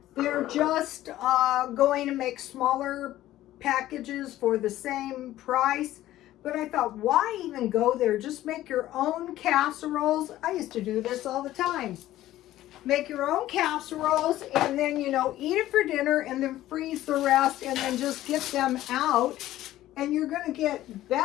they're just going to make smaller packages for the same price. But I thought, why even go there? Just make your own casseroles. I used to do this all the time. Make your own casseroles, and then, eat it for dinner, and then freeze the rest, and then just get them out. And you're going to get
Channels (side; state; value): right; quieter; 14.5 dB